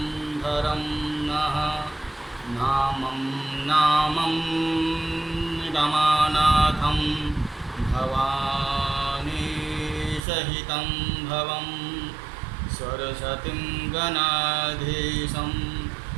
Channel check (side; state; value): left; drops out; at 10.2 s